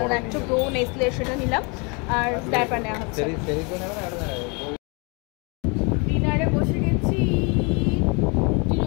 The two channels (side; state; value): right; quieter; 31.6 dB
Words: ল্যাকটো প্রো নেসলে সেটা নিলাম আর ডায়পার নেওয়া হচ্ছে ডিনারে বসে গেছি রুটি